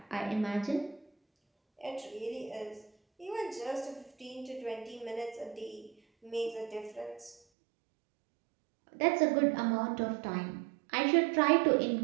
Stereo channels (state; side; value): drops out; left; at 7.4 s